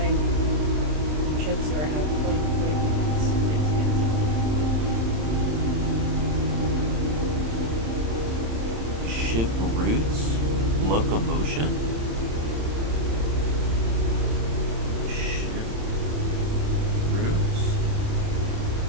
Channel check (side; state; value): left; late; 27 ms